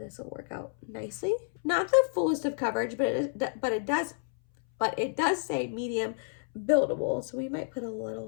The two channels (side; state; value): right; silent; 58 dB below the other